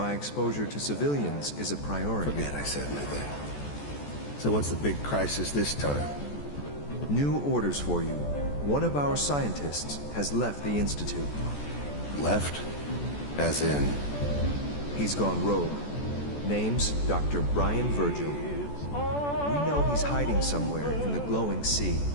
exposure to civilians is a priority. Forget I said anything. So what's the big crisis this time? New orders for you. One of our scientists has left the Institute. Left? As in? He's gone rogue. Name's Dr. Brian Virgil. We know he's hiding somewhere in the glowing sea.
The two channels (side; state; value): right; late; 14 ms